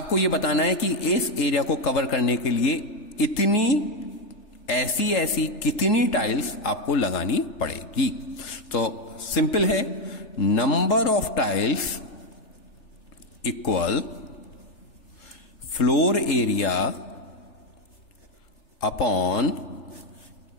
ये बताना है कि इस एरिया को कवर करने के लिए इतनी ऐसी कितनी टाइल्स आपको लगानी पड़ेगी। तो सिंपल है, number of tiles equal floor area upon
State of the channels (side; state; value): right; late; 3.4 ms